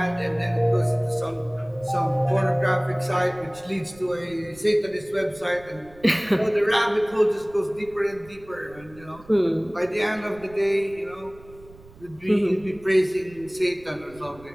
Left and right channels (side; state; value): right; noise; rumble, 23 dB below the sound